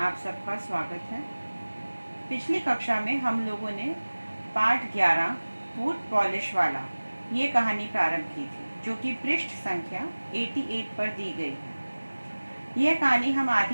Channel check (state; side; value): inverted; both; correlation -1.00